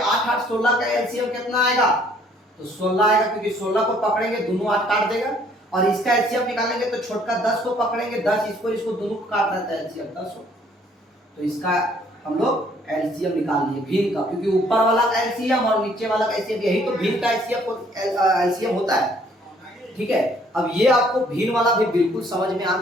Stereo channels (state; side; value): normal; both; correlation 0.62